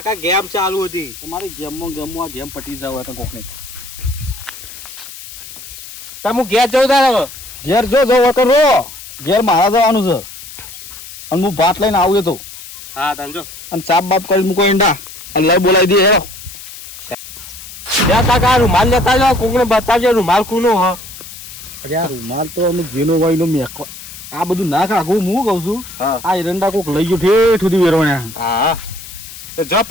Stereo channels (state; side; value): noise; left; hiss, 14 dB below the sound